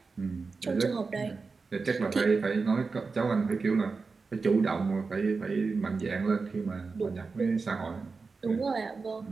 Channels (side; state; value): left; quieter; 4.4 dB